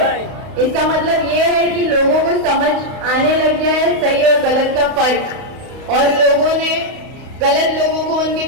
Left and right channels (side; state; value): left; late; 32 ms